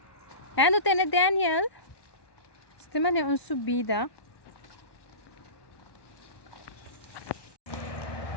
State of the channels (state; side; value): late; right; 1.0 ms